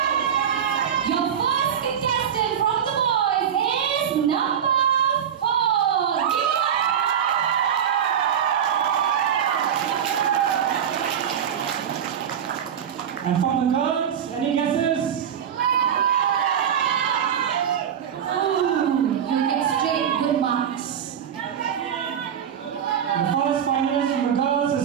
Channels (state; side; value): quieter; left; 8.6 dB